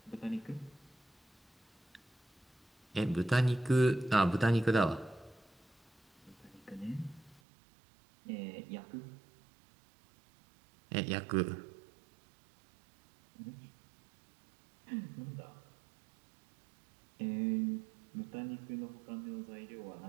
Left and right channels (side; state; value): left; drops out; at 7.4 s